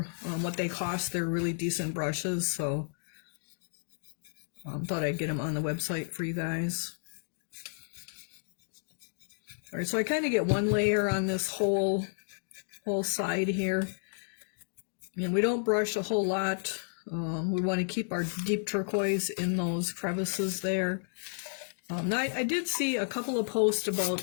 what they cost. They're really decent brushes. So thought I'd get them on the website for you guys. All right, so I kind of get one layer on this whole side here. And we don't brush a whole lot. We want to keep our deep turquoise in those crevices there. Now I did see a couple of posts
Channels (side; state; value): right; silent; digital silence